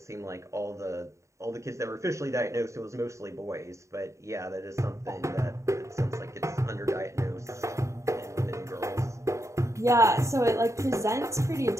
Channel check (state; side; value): late; left; 0.14 ms